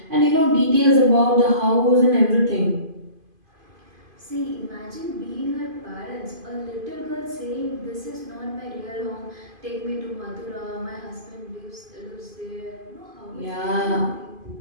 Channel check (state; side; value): late; left; 2.5 ms